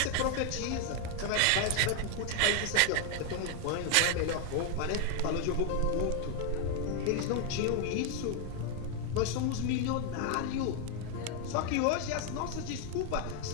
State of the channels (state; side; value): different; both; correlation 0.01